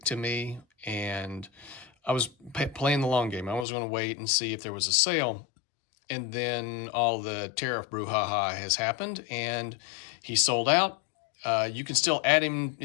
to me, and I was playing the long game. I was going to wait and see if there was a sale, and then all the tariff brouhaha has happened, and he sold out. You can still add him.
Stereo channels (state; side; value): drops out; right; at 3.7 s